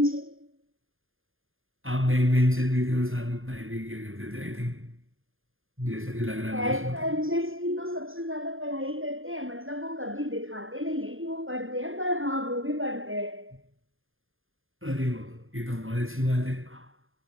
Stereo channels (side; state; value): left; late; 0.59 ms